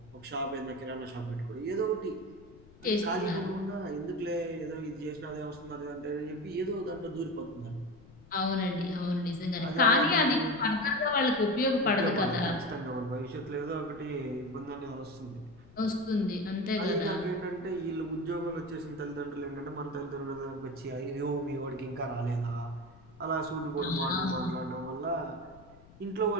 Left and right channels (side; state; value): left; noise; rumble, 23 dB below the sound